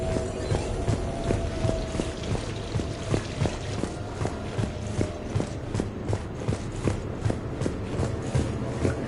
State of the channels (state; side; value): identical; both; correlation 1.00